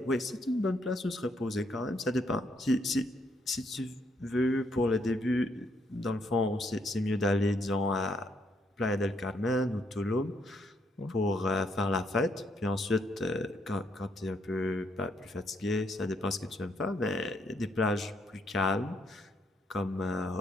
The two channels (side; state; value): both; normal; correlation 0.73